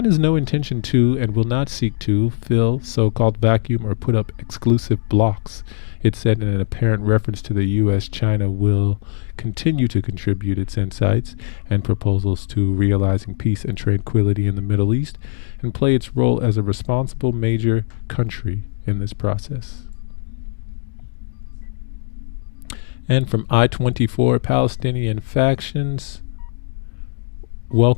has no intention to and will not seek to fill so-called vacuum or put up exclusive blocks, it said in an apparent reference to the U.S. China will continue to contribute its insights and proposals to realizing peace and tranquility in the Middle East and play its role as a responsible major country in this process. And from I-24, Palestinian factions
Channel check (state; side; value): silent; right; digital silence